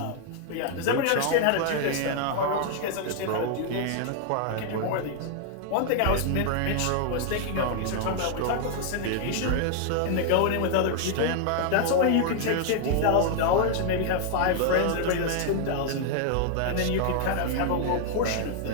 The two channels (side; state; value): both; different; correlation 0.00